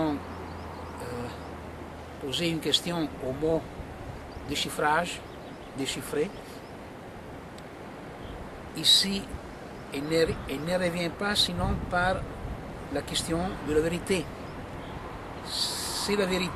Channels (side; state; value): both; identical; correlation 1.00